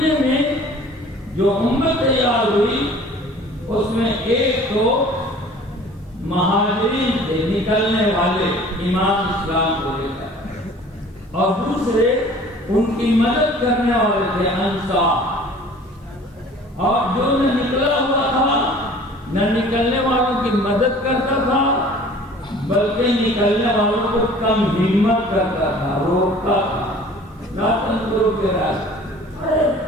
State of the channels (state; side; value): normal; both; correlation 0.48